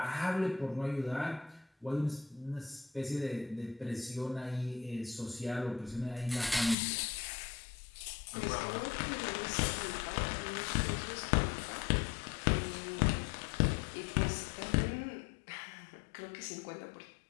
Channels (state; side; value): drops out; right; at 6.8 s